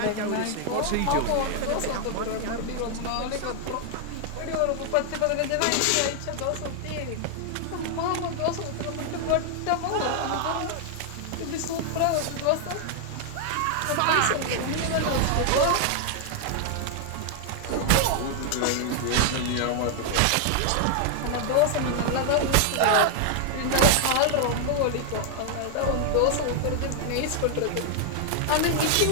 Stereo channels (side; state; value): both; different; correlation 0.00